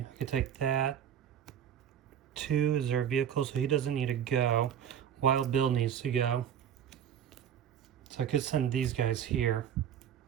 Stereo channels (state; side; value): quieter; left; 9.0 dB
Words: I could take that. 2 is their vehicle, so he doesn't need to go. Wild Bill needs to go. So I could send these guys here